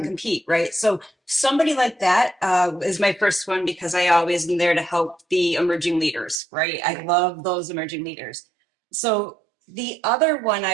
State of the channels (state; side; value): drops out; left; at 6.4 s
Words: to compete, right? So somebody like that is my first one because I always am there to help the emerging leaders, right? I love those emerging leaders. So the other one